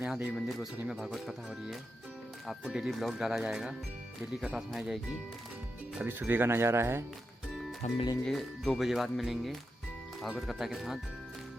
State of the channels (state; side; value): normal; both; correlation 0.87